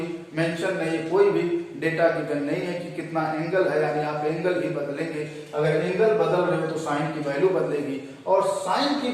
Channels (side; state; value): both; identical; correlation 1.00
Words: मेंशन नहीं है, कोई भी डेटा गिवन नहीं है कि कितना एंगल है, यानी आप एंगल ही बदलेंगे। अगर एंगल बदल रहे हो तो साइन की वैल्यू बदलेगी, और साइन की